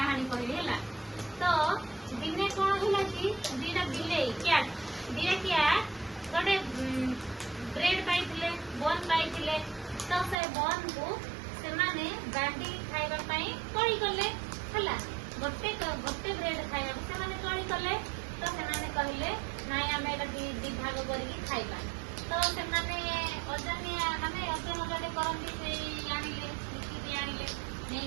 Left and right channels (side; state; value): left; drops out; at 10.4 s